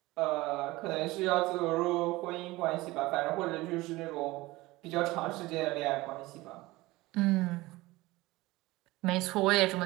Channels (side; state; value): left; quieter; 20.0 dB